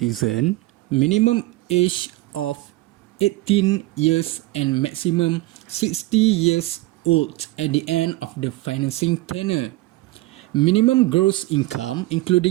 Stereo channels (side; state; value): left; quieter; 18.8 dB